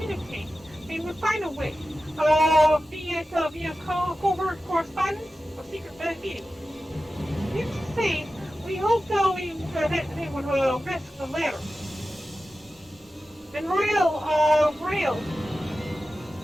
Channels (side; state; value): both; normal; correlation 0.94